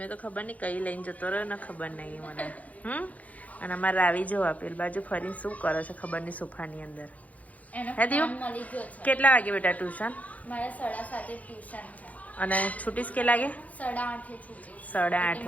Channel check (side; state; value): right; late; 0.072 ms